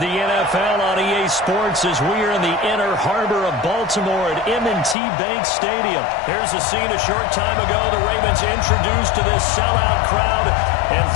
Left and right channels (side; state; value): right; drops out; at 5.0 s